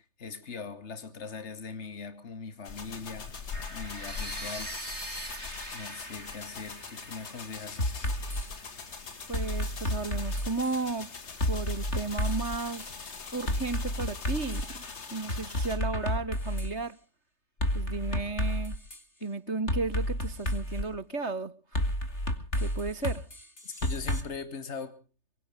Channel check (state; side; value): late; right; 3.3 ms